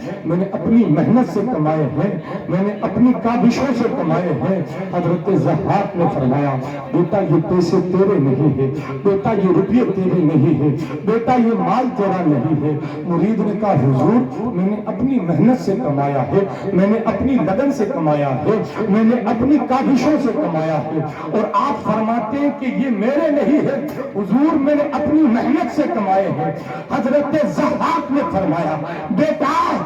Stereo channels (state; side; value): identical; both; correlation 1.00